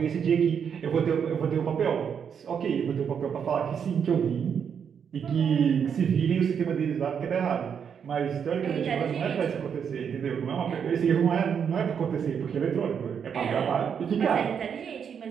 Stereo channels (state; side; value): quieter; left; 7.4 dB